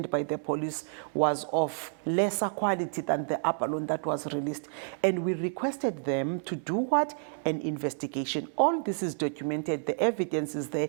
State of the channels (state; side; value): silent; left; 58 dB below the other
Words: by the police was of lesser quality than the abalone that was released. And we requested them to do what? An investigation. All this is documented. The evidence is there.